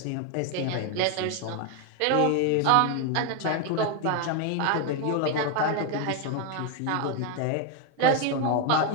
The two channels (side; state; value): both; different; correlation 0.01